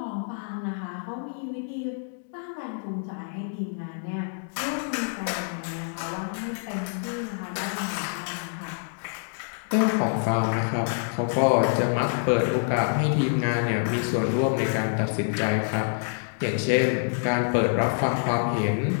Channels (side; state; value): right; silent; digital silence